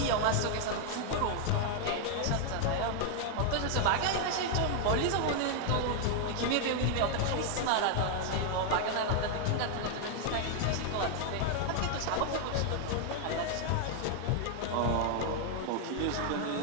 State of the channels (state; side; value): different; both; correlation 0.00